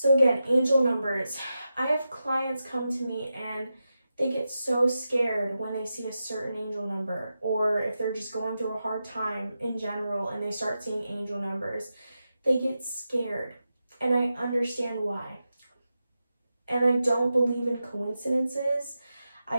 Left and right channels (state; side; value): inverted; both; correlation -0.90